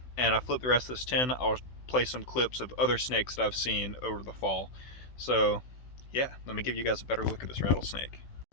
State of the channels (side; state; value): right; late; 16 ms